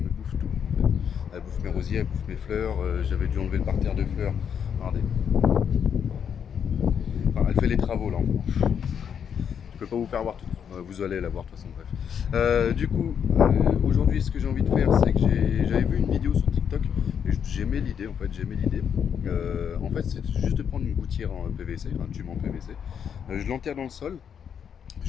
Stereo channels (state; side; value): quieter; right; 7.8 dB